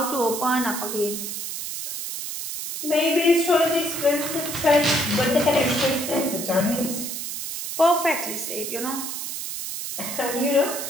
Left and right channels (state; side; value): noise; right; hiss, 5 dB below the sound